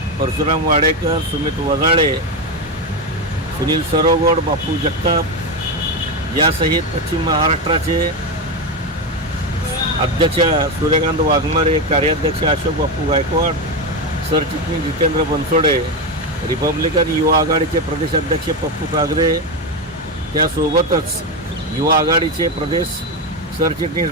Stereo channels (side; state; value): both; normal; correlation 0.13